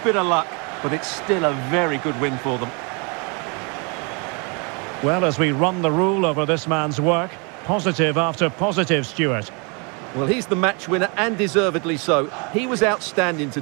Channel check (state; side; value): quieter; left; 33.1 dB